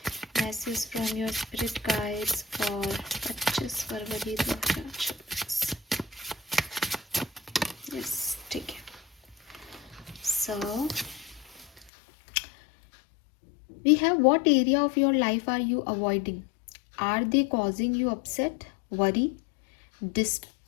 Message from your spirit guides for 25 February 2024। Yes, ठीक है। सो we have, what area of your life are you avoiding? Are they causing you upset, worry,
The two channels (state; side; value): drops out; right; at 11.9 s